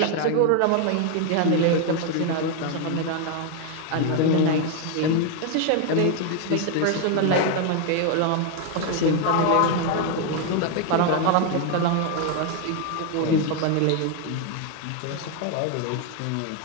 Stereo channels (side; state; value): both; different; correlation 0.01